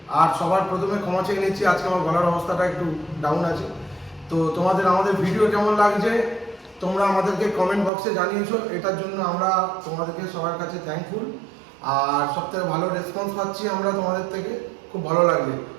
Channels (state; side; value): drops out; left; at 7.9 s